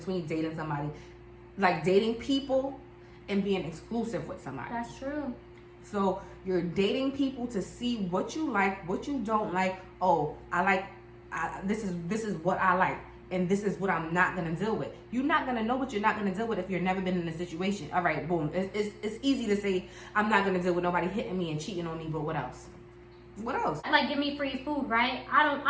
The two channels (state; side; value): identical; both; correlation 1.00